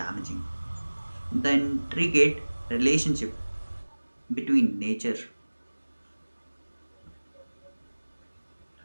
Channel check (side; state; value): both; inverted; correlation -1.00